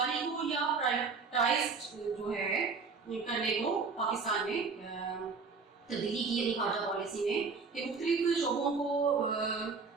को या प्राइवेटाइज्ड जो है करने को पाकिस्तान ने तब्दीली की अपनी खारजा पॉलिसी में कि मुख्तलिफ शोबों को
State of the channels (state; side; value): quieter; left; 4.8 dB